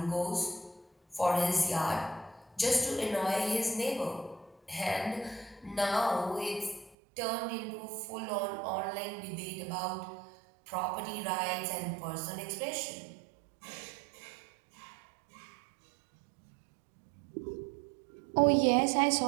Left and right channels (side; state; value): left; drops out; at 7.0 s